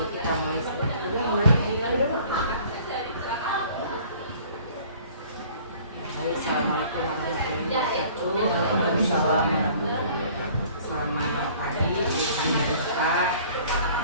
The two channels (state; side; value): inverted; both; correlation -0.52